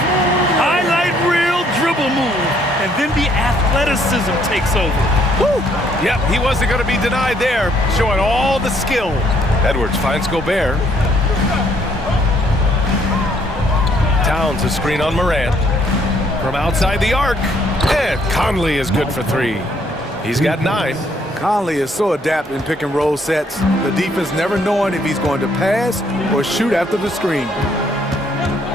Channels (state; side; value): normal; both; correlation 0.67